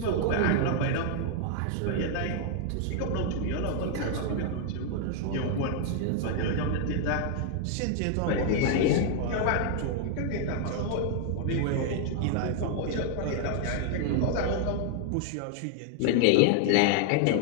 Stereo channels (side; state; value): both; different; correlation 0.00